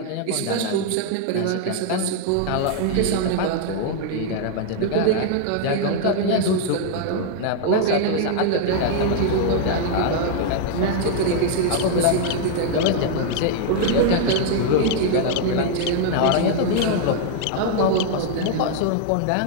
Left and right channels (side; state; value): both; different; correlation 0.00